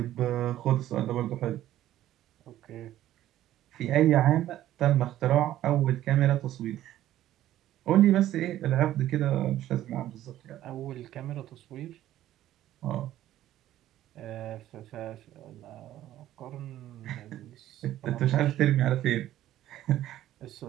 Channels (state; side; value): quieter; left; 13.3 dB